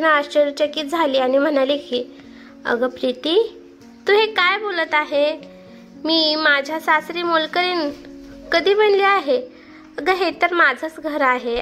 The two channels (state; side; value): identical; both; correlation 1.00